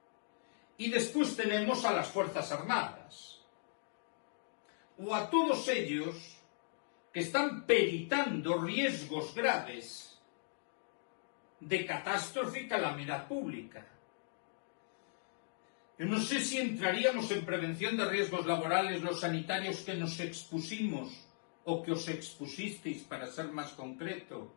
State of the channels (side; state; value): right; silent; digital silence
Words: Y después tenemos a las Fuerzas Armadas, o a todos ellos que están peritando riesgos graves de catástrofe y calamidad pública. Yo no sé si entraríamos en prevención de riesgos laborales los sanitarios que nos expusimos o que os expusisteis, para ser más concreto,